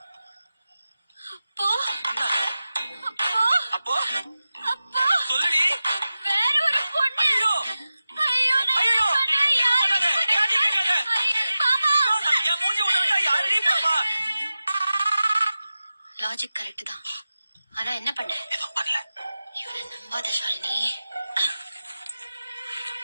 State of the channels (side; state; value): both; inverted; correlation -0.94